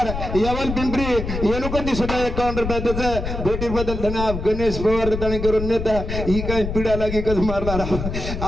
यवल पिंपरी येनुकंदी सुद्धा 51 रुपया त्याचं भेटीर बदल धन्यवाद गणेश पवार त्याने करून नेता ही काय पिढा लागी कस मारणार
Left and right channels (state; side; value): noise; left; rumble, 5 dB below the sound